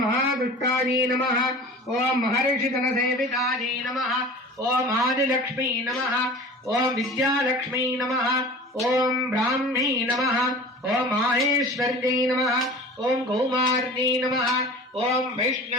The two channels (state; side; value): normal; both; correlation 0.39